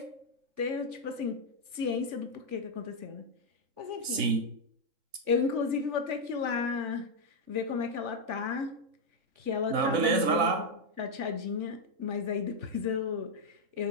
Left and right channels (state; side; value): late; left; 3.9 ms